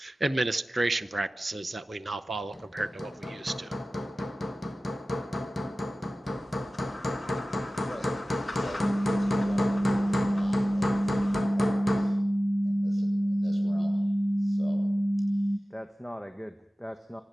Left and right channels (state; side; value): normal; both; correlation 0.96